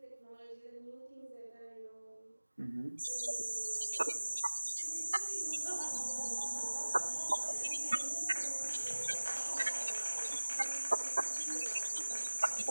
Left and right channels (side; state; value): both; inverted; correlation -1.00